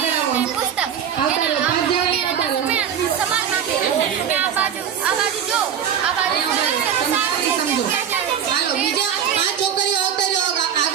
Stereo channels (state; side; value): quieter; left; 8.5 dB